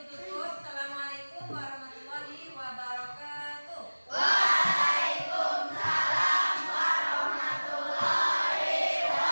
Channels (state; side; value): inverted; both; correlation -1.00